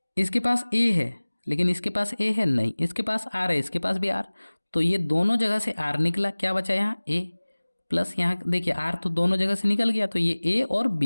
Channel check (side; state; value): both; inverted; correlation -1.00